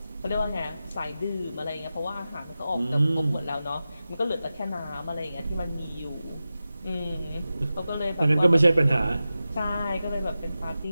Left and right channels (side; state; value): both; inverted; correlation -0.94